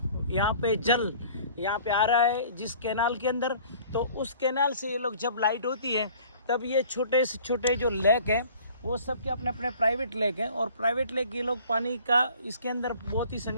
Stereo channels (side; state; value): both; inverted; correlation -0.50